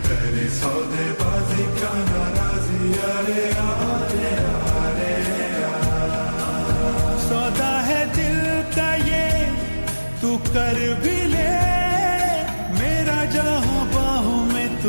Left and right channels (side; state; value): both; inverted; correlation -1.00